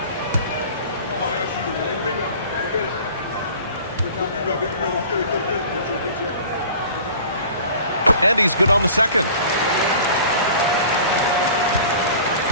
And he's good on the second.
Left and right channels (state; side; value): inverted; both; correlation -0.44